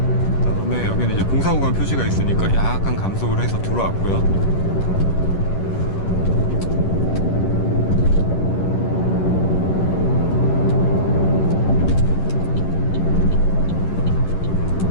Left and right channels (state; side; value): late; right; 10 ms